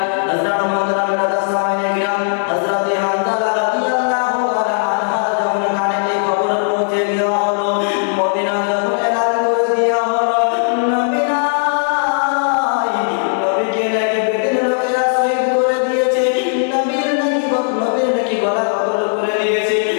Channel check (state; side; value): silent; right; digital silence